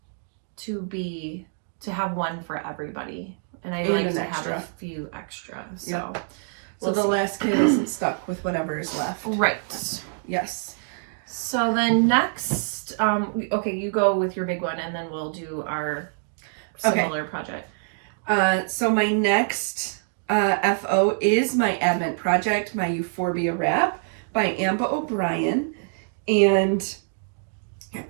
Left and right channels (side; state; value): left; silent; digital silence